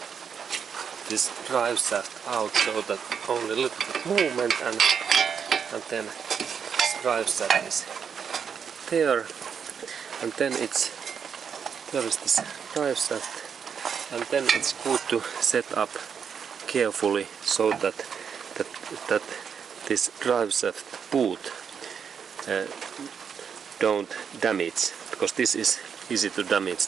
drive shaft out, so that only a little bit movement, and then this drive shaft is there, and then there is this drive shaft, and then it's good to set up carefully so that this drive shaft boot don't damage, because this is easy to damage,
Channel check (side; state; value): left; quieter; 7.0 dB